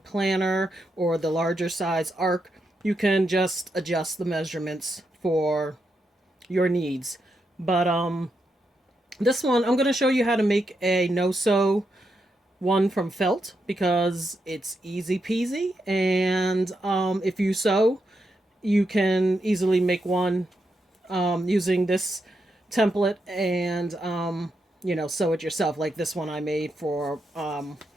planner or the larger size ARC, you can just adjust the measurements for your needs. But this one, I'm going to show you how to make a no-sew one from felt because it's easy peasy. And if you sew, you can easily make one using this template and, sew it yourself. Like this one I made for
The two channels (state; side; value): normal; both; correlation 0.83